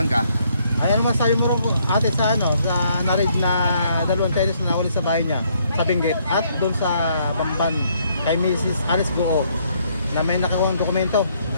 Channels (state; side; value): inverted; both; correlation -0.69